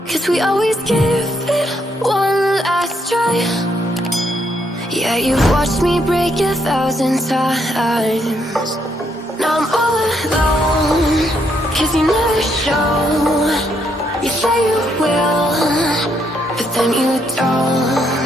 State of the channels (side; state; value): both; normal; correlation 0.74